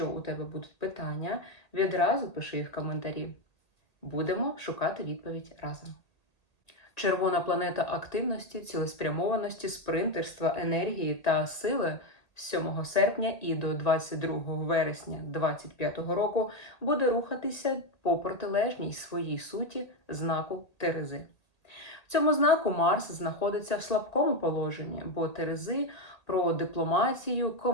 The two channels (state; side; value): late; right; 1.8 ms